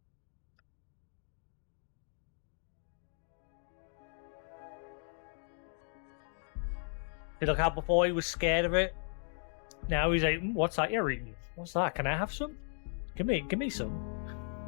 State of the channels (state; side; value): silent; right; 54 dB below the other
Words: See, look how before he was scared of it. Now he's like, what's that you're eating? What's that? Can I have some? Give me some.